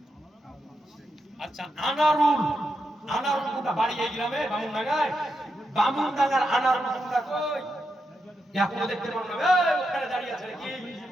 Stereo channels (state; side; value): normal; both; correlation 0.85